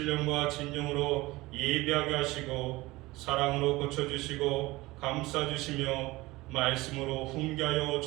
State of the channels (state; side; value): quieter; left; 20.3 dB